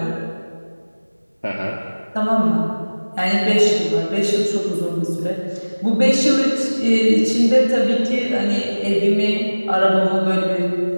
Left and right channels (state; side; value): inverted; both; correlation -1.00